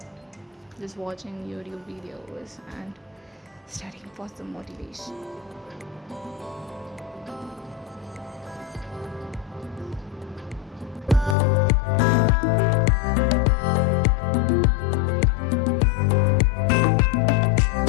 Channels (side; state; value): right; drops out; at 11.4 s